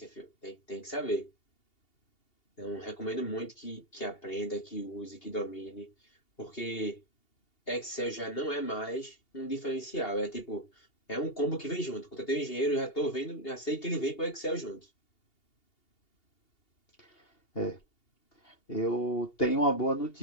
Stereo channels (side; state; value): right; late; 2.8 ms